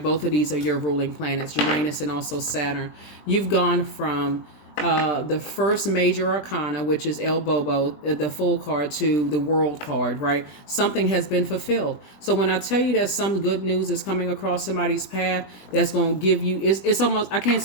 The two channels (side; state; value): right; late; 20 ms